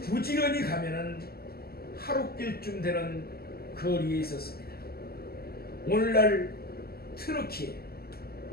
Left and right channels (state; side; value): late; right; 0.45 ms